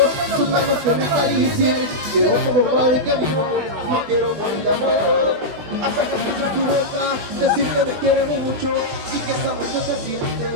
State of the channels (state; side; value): late; left; 21 ms